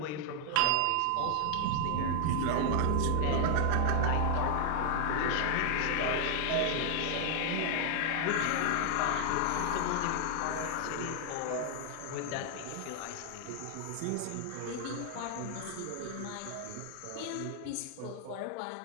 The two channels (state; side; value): different; both; correlation 0.00